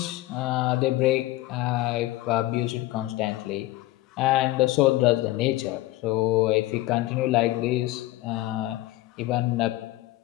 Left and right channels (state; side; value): quieter; right; 17.2 dB